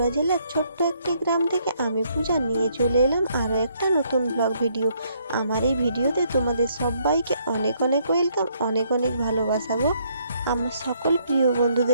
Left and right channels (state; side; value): inverted; both; correlation -0.69